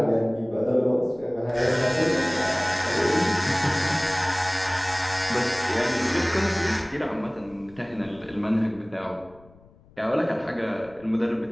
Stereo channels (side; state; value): left; noise; rumble, 27 dB below the sound